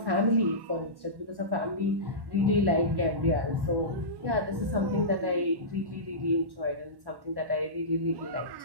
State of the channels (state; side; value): late; left; 1.1 ms